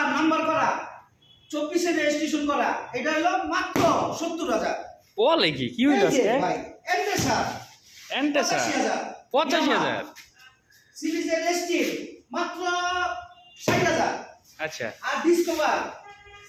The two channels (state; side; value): identical; both; correlation 1.00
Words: নাম্বার করা, 24 এর রেজিস্ট্রেশন করা, এটা হলো মাত্র 70,000। বলে কি, কি হইল আজকে? ভাই এন্টেসার এন্টেসার 85,000? সিরিজের এসটি মাত্র 60,000। আচ্ছা, আর discover